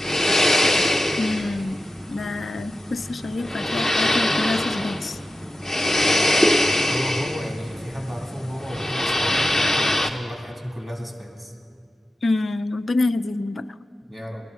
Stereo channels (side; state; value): both; normal; correlation 0.93